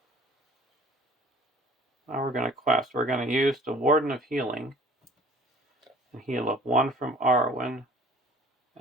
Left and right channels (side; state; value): both; normal; correlation 0.50